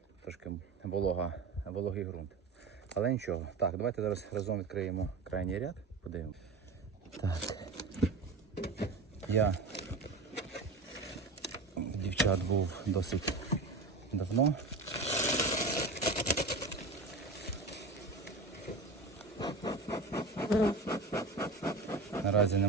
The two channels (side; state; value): left; quieter; 3.5 dB